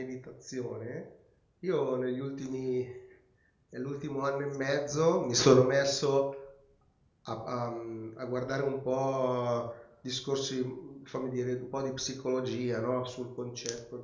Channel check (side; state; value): both; identical; correlation 1.00